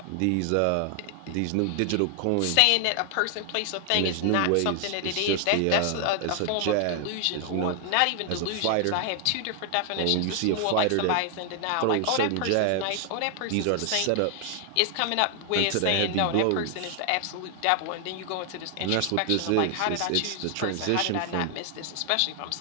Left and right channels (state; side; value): different; both; correlation 0.00